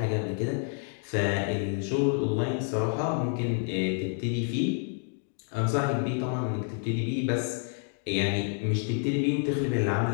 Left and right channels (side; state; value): right; silent; 58 dB below the other